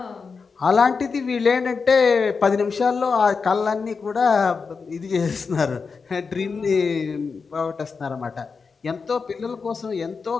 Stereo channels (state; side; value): quieter; right; 5.0 dB